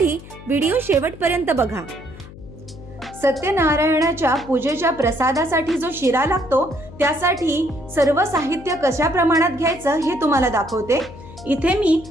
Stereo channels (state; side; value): noise; left; hum, 17 dB below the sound